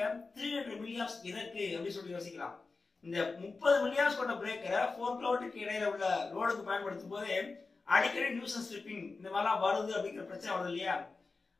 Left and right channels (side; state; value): right; quieter; 4.0 dB